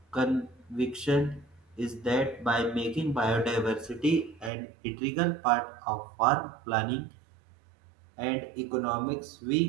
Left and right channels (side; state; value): left; drops out; at 4.5 s